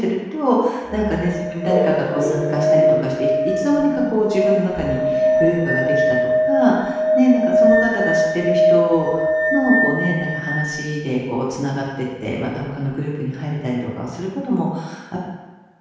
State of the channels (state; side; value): identical; both; correlation 1.00